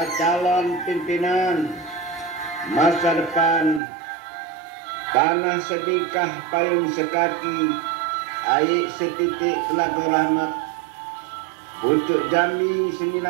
calon pimpinan masa depan tanah sedikah payung sekaki aik setitik telaga rahmat, pucuk Jambi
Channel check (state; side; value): drops out; left; at 3.8 s